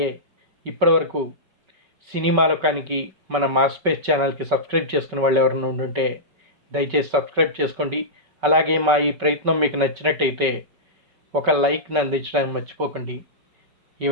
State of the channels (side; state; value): left; late; 5.3 ms